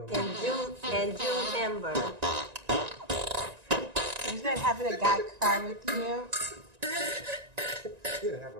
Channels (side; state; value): left; late; 1.9 ms